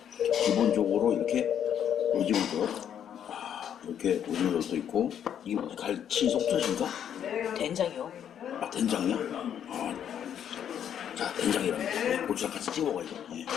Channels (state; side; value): quieter; right; 9.3 dB